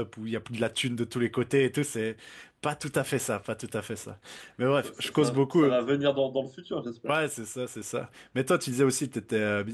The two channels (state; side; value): identical; both; correlation 1.00